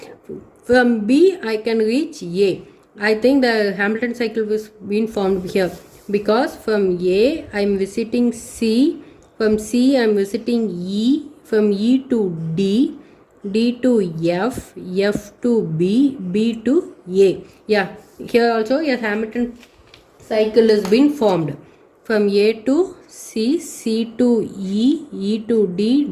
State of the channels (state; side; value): identical; both; correlation 1.00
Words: From B I can reach A. I think the Hamilton cycle was being formed here because from A I am visiting C. From C I am visiting E. From E to D. D to F. F to B. B to A. Yeah, here also a Hamilton cycle has been formed. From A to C, C to E, E to D,